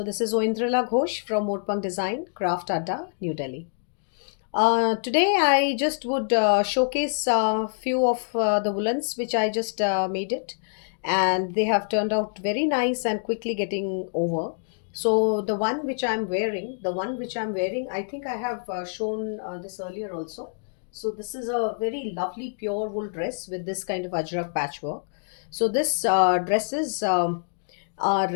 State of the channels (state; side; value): silent; right; digital silence